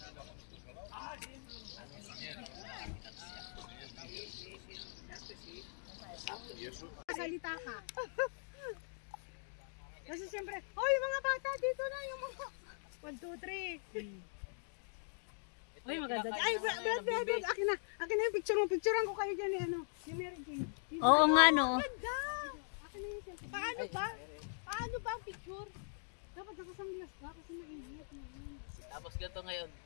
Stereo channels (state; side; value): silent; right; digital silence